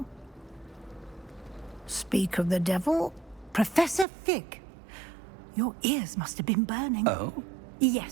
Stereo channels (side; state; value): left; drops out; at 4.0 s